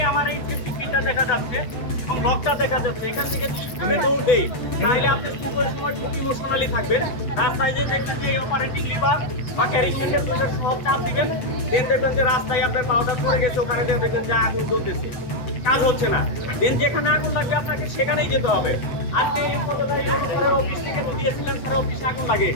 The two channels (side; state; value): right; late; 7.9 ms